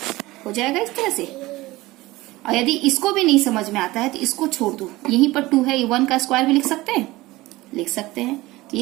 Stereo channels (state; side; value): quieter; left; 19.4 dB